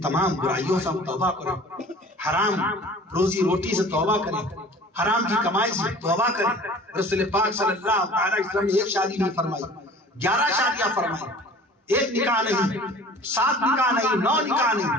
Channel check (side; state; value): both; normal; correlation 0.46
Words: برائیوں سے ہم توبہ کریں، حرام روزی روٹی سے توبہ کریں، حرام کی کمائی سے توبہ کریں. رسول پاک صلی اللہ علیہ وسلم نے ایک شادی نہیں فرمائی، 11 شادیاں فرمائی. ایک نکاح نہیں، 7 نکاح نہیں، 9 نکاح